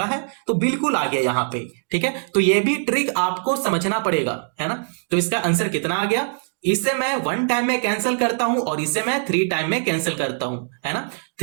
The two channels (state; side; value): silent; left; digital silence